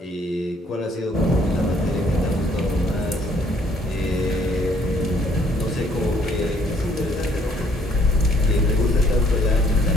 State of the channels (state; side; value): normal; both; correlation 0.64